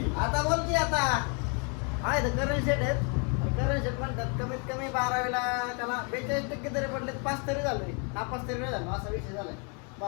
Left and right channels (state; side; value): quieter; right; 36.7 dB